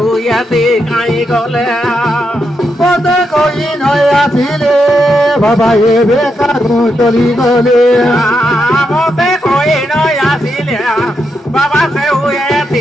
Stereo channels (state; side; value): normal; both; correlation 0.83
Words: কাই গলে পদে কই নয় আসিলে বাবা এ বেকারু চলি গলে মতে কই নয় আসিলে বাবা সে